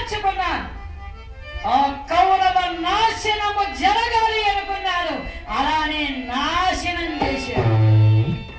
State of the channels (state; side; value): identical; both; correlation 1.00